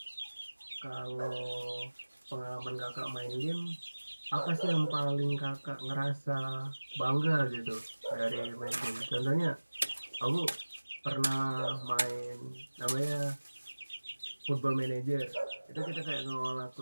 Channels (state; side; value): inverted; both; correlation -1.00